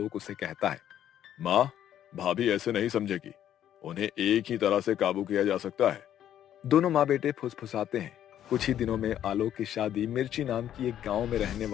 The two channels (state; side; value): quieter; right; 10.9 dB